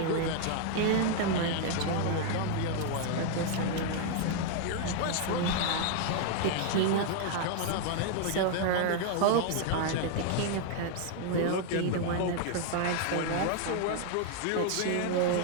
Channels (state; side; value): different; both; correlation 0.00